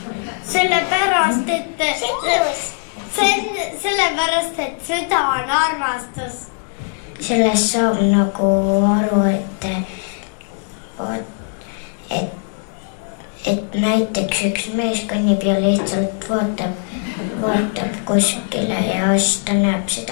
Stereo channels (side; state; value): right; silent; 55 dB below the other